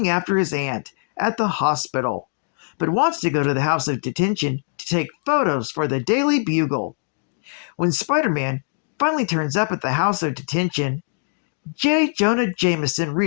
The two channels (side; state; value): right; silent; digital silence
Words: after his aunt at the hospital, but wants to go to the House of Detention to take photos for the Daily Bugle. When Spider-Man finally turns up at the House of Detention, J. Jonah Jameson